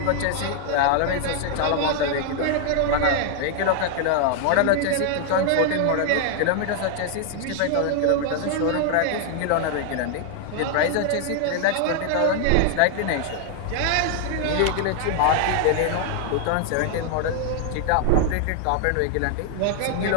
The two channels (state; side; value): different; both; correlation 0.00